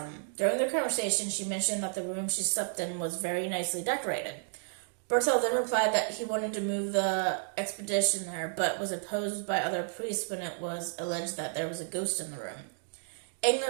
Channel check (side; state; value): left; silent; digital silence